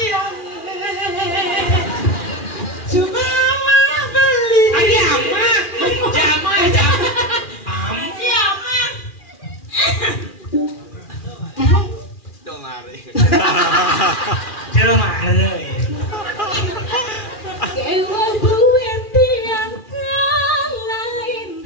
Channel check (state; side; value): late; right; 2.4 ms